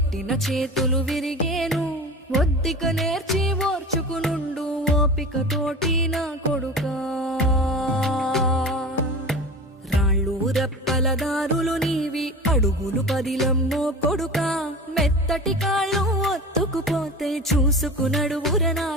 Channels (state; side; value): normal; both; correlation 0.33